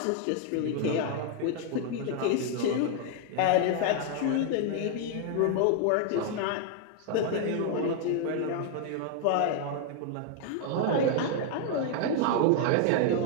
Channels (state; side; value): different; both; correlation 0.00